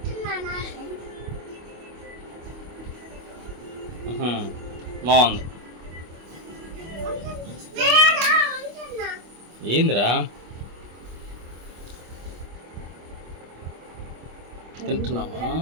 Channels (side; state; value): left; late; 25 ms